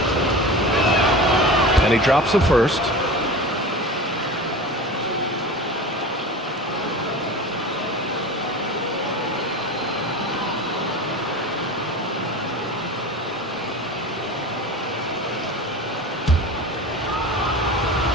And he drops the first.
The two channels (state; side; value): normal; both; correlation 0.33